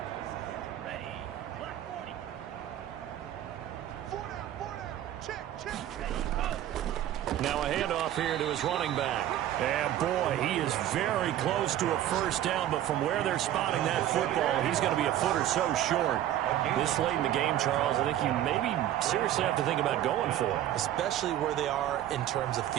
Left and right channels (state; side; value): quieter; left; 12.2 dB